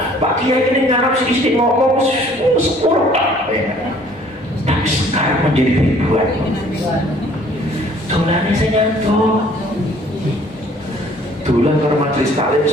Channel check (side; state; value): both; normal; correlation 0.57